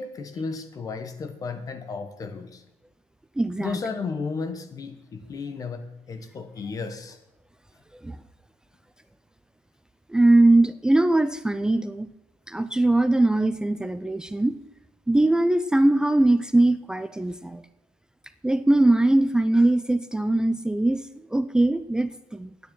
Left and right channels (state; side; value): normal; both; correlation 0.97